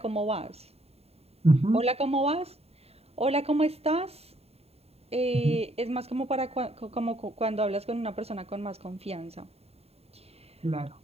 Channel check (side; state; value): left; late; 0.29 ms